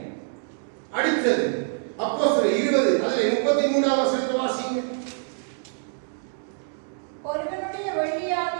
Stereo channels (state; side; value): silent; left; 61 dB below the other